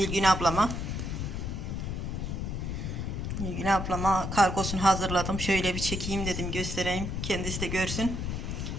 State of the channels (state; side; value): noise; left; rumble, 3 dB below the sound